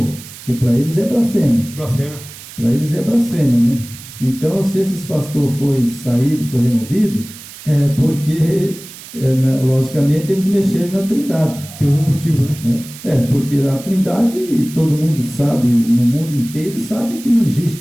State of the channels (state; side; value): noise; right; hiss, 16 dB below the sound